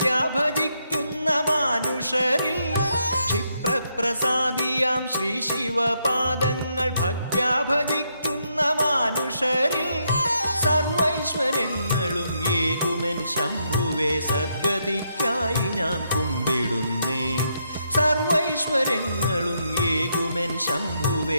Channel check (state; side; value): inverted; both; correlation -0.78